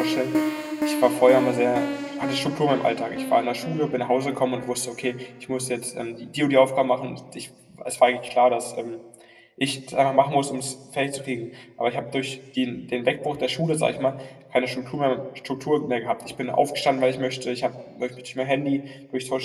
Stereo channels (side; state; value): both; identical; correlation 1.00